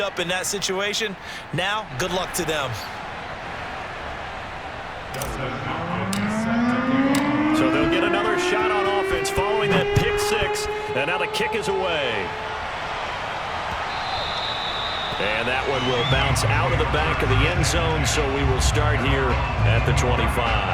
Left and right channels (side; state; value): both; identical; correlation 1.00